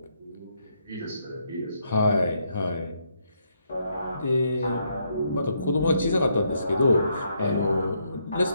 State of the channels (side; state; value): both; inverted; correlation -0.75